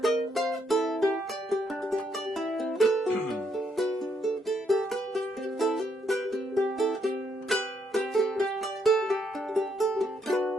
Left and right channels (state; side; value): normal; both; correlation 0.75